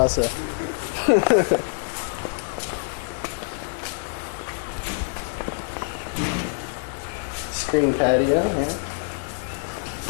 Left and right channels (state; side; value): silent; right; digital silence